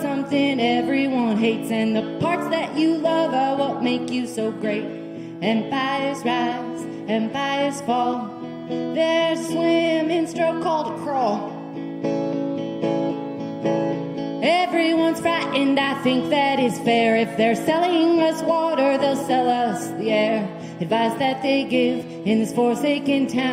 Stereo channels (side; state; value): both; identical; correlation 1.00